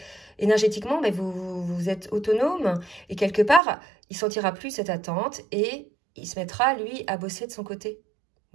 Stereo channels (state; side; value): drops out; left; at 3.6 s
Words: énergétiquement, mais vous êtes autonome, et quelque part, il sentira plus cette attente, et il se mettra, lui, à bosser de son côté,